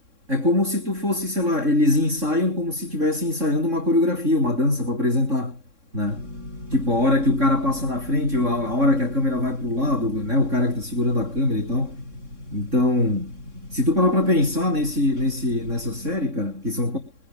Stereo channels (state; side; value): late; left; 3.6 ms